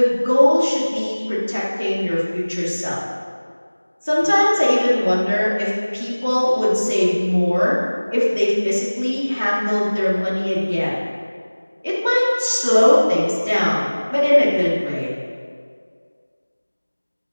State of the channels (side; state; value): both; inverted; correlation -1.00